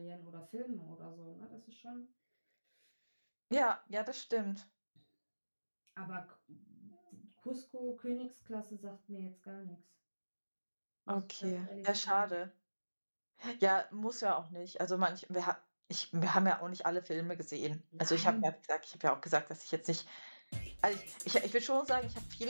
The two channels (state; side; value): inverted; both; correlation -1.00